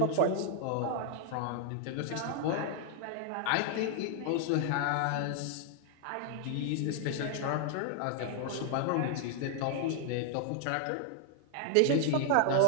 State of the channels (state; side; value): different; both; correlation 0.00